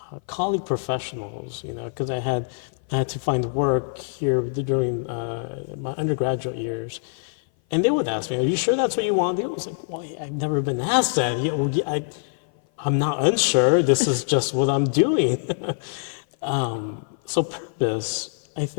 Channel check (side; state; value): right; silent; 56 dB below the other